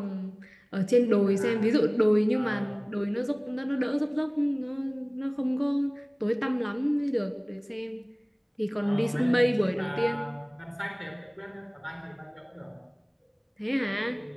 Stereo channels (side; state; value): both; identical; correlation 1.00